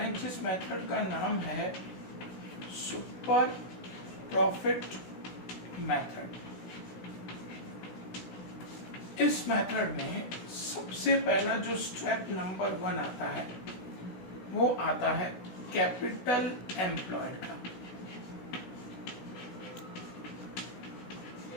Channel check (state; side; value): late; right; 16 ms